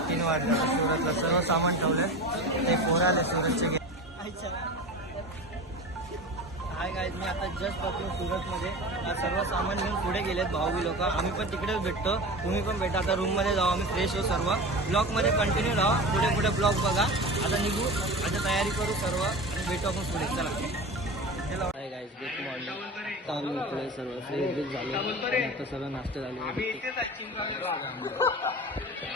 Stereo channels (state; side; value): normal; both; correlation 0.31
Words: 3 वाजले. सुरतला सर्व सामान ठेवलंय. ते पोरं आले सुरतचे. हाय गाईज, मी आता जस्ट पोहोचलो सुरतमध्ये. सर्व सामान घेऊन पुढे गेलेत भाऊ लोक. आम्ही पण तिकडेच भेटतो, तुम्ही पण भेटा. आता रूममध्ये जाऊ आम्ही, फ्रेश होऊ. सर्व ब्लॉगमध्ये कंटिन्यू राहा. पुढे ब्लॉग बघा. आता निघू, आता तयारी करू सर्व आणि भेटू आपण पुढे. चला. Hi guys, good morning. आता आम्ही इकडे सर्व फ्रेश बीच झालो. आता सर्व नाश्ता झाले.